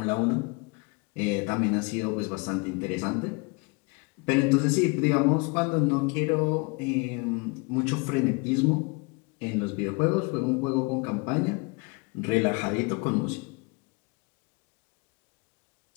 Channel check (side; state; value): right; quieter; 29.8 dB